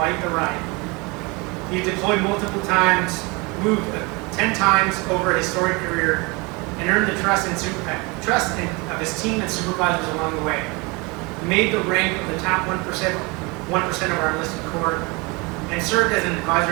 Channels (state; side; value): quieter; left; 27.0 dB